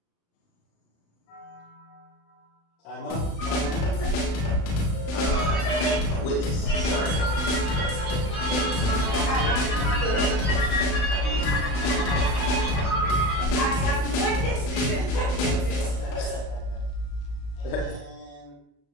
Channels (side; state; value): right; late; 35 ms